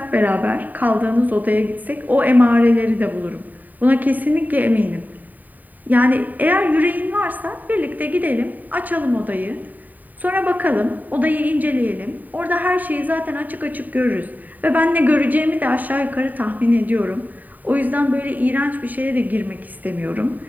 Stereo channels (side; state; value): left; late; 0.083 ms